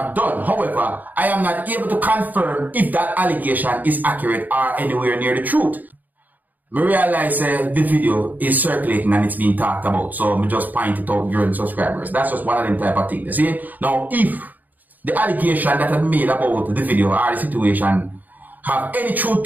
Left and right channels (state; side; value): late; left; 0.083 ms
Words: done. However, I am not able to confirm if that allegation is accurate or anywhere near the truth. I realize the video is circulating and it's being talked about, so I just point it out during subscribers. That's just one of them type of things. See? Now, if the allegation that I made about the video or the situation have any truth